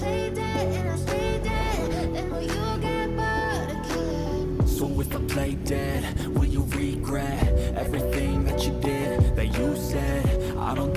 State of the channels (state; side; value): identical; both; correlation 1.00